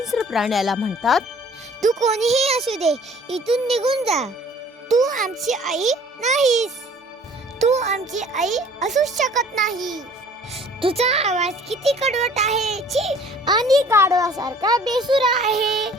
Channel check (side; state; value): both; normal; correlation 0.52